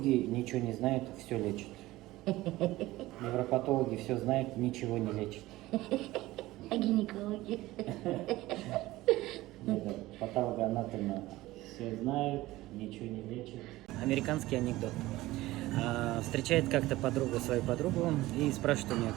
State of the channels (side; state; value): left; quieter; 17.8 dB